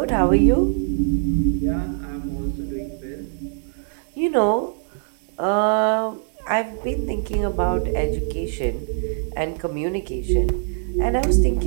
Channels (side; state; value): left; silent; digital silence